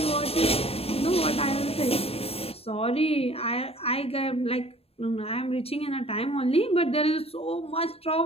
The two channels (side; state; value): right; late; 0.28 ms